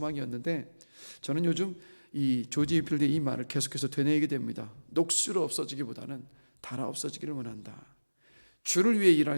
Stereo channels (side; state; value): both; inverted; correlation -1.00